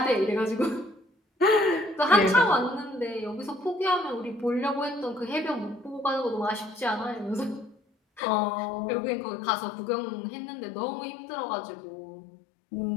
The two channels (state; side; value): drops out; right; at 8.2 s